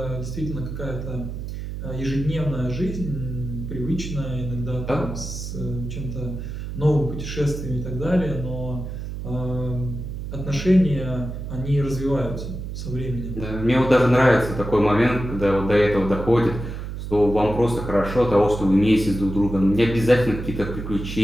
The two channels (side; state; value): right; noise; hum, 7 dB below the sound